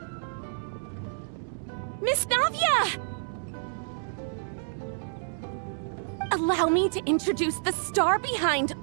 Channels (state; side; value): silent; left; digital silence